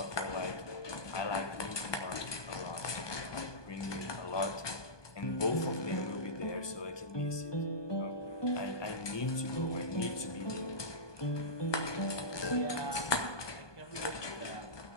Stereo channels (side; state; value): right; late; 1.2 ms